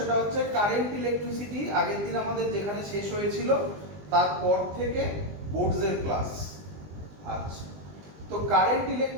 হচ্ছে কারেন্ট ইলেকট্রিসিটি। আগের দিন আমাদের যেখানে শেষ হয়েছিল তারপর থেকে বোর্ডসের ক্লাস। আচ্ছা, তো কারেন্ট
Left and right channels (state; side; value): late; left; 20 ms